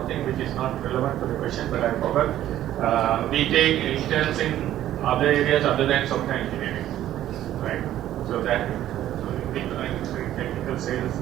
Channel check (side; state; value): left; quieter; 12.7 dB